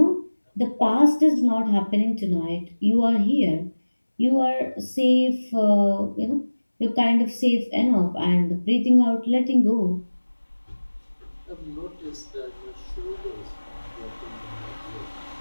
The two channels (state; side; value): inverted; both; correlation -1.00